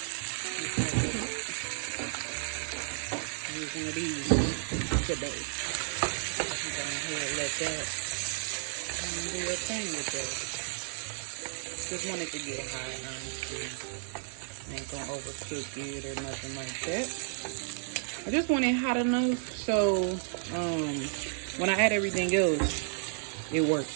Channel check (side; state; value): left; silent; 56 dB below the other